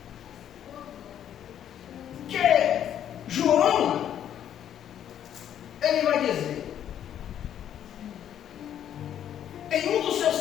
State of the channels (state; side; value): quieter; right; 10.1 dB